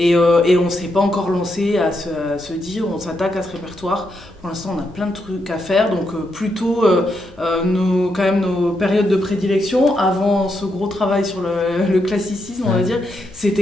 on s'est pas encore lancé à se dire, on s'attaque à ce répertoire. Pour l'instant, on a plein de trucs à faire, donc plutôt nos périodes de prédilection avant ce gros travail sur le classicisme, on va dire,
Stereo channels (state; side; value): normal; both; correlation 0.81